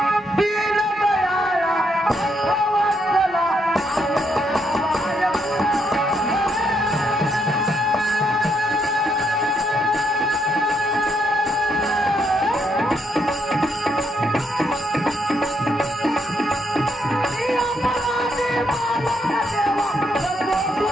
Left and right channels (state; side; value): normal; both; correlation 0.76